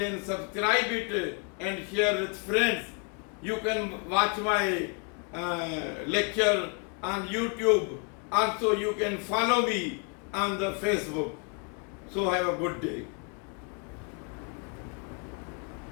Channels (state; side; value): quieter; right; 36.8 dB